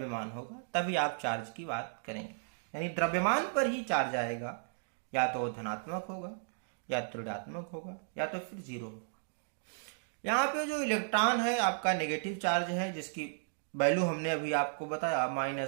होगा तभी आप चार्ज की बात करेंगे। यानी द्रव्यमान पर ही चार्ज आएगा, या तो धनात्मक होगा या तो ऋणात्मक होगा या तो फिर जीरो होगा। यहाँ पे जो इलेक्ट्रॉन है आपका नेगेटिव चार्ज है, जिसकी वैल्यू हमने अभी आपको बताया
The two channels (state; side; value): silent; left; digital silence